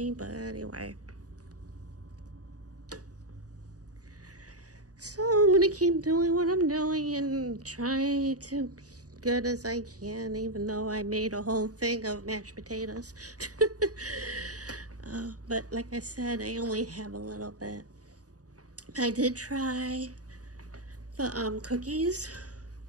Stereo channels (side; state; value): left; late; 0.67 ms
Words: but anyway. So I'm going to keep doing what I'm doing and try to be good as I can, even though I made a whole thing of mashed potatoes. But like I said, I only have a little bit. I did try the cookies